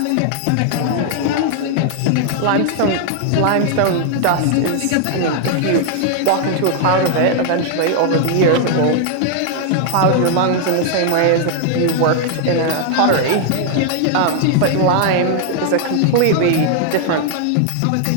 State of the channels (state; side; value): different; both; correlation 0.00